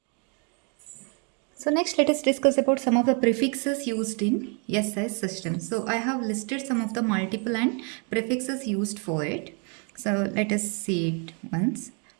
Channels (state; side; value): quieter; left; 37.3 dB